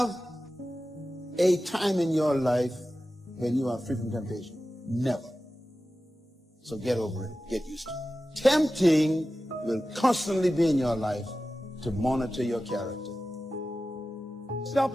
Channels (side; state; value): both; normal; correlation 0.94